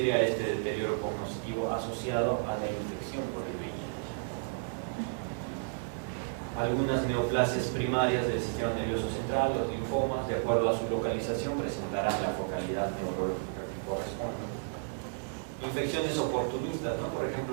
a este deterioro cognitivo asociado a la infección por el VIH. Algunas neoplasias primarias del sistema nervioso central, los linfomas, de acuerdo a su localización, presentarán la focalidad neurológica que corresponde. Infecciones oportunistas, ¿no? Por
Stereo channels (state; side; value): silent; left; digital silence